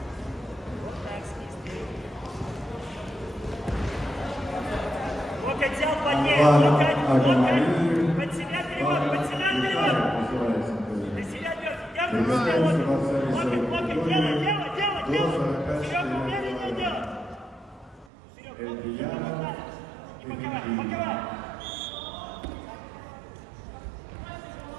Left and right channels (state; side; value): drops out; left; at 18.1 s